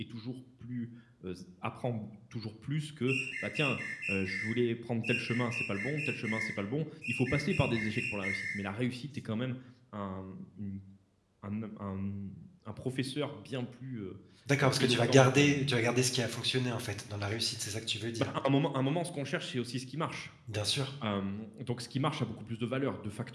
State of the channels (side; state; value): both; identical; correlation 1.00